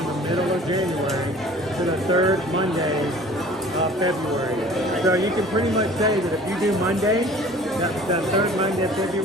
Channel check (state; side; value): normal; both; correlation 0.47